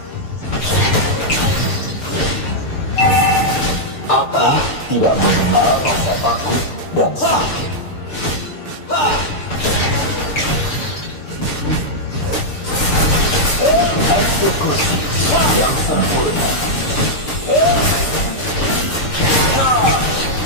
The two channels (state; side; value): late; right; 6.7 ms